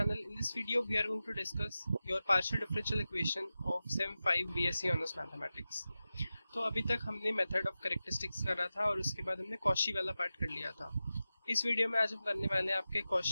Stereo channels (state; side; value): inverted; both; correlation -0.94